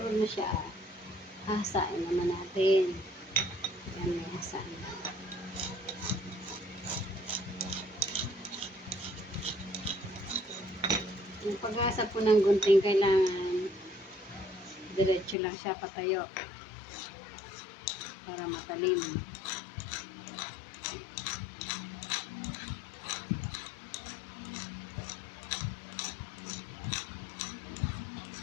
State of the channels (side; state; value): right; drops out; at 15.4 s